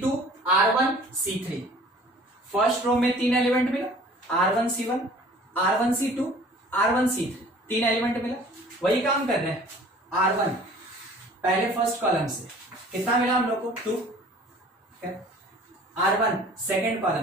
R1 C3, first row में 3 एलिमेंट मिला, R1 C1 R1 C2 R1 C3, 3 element मिला, वही काम कर रहे हैं। R1 पहले फर्स्ट कॉलम से कितना मिला हम लोग को 2, R1 सेकेंड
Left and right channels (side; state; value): both; normal; correlation 0.49